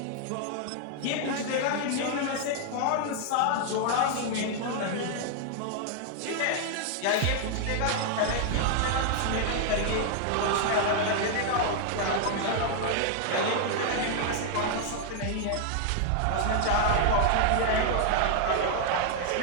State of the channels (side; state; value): both; different; correlation 0.00